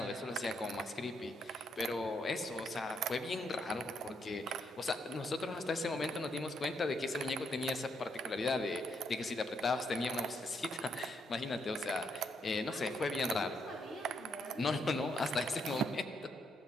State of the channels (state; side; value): normal; both; correlation 0.76